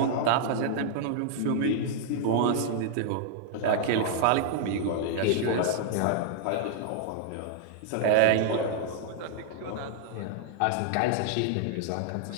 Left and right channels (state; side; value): different; both; correlation -0.01